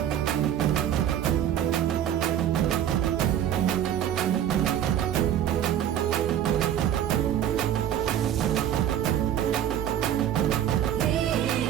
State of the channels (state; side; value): quieter; left; 10.4 dB